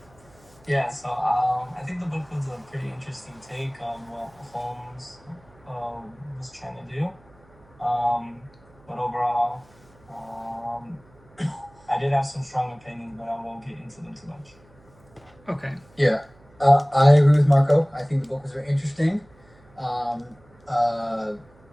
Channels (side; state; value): right; noise; hum, 28 dB below the sound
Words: I think the book was a pretty interesting take on what Holmes was trying to do. Um, but overall, um, I did have some strong opinions, but I won't get into them too much. Okay. Yeah, I agree with Marco. I think the book was very interesting. Um, uh,